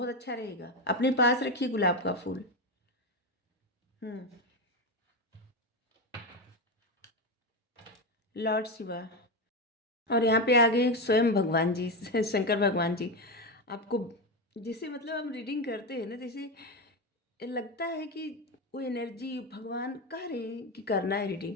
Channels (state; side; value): normal; both; correlation 0.14